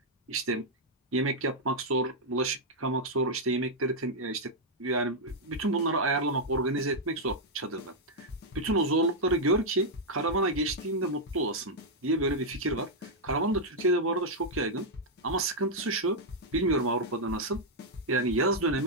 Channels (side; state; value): both; normal; correlation -0.03